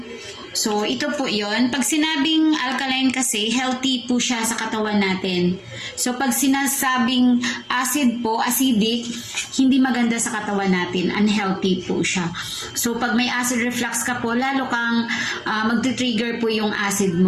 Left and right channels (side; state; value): both; identical; correlation 1.00